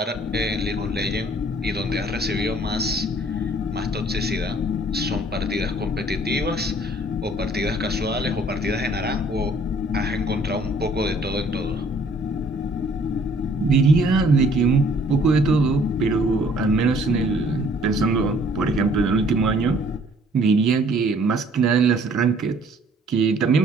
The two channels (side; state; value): both; normal; correlation 0.58